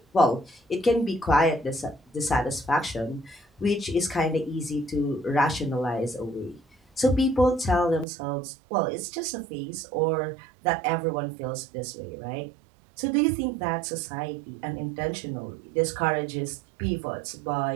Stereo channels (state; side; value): drops out; left; at 8.1 s